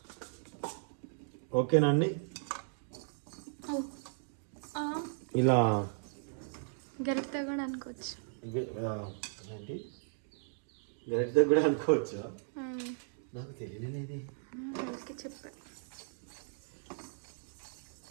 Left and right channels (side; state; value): left; silent; digital silence